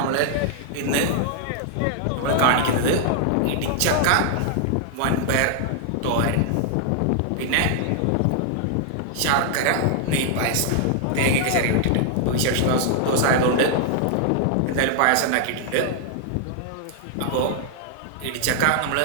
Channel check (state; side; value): different; both; correlation 0.00